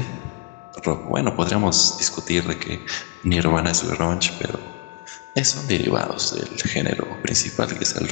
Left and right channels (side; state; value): right; quieter; 32.9 dB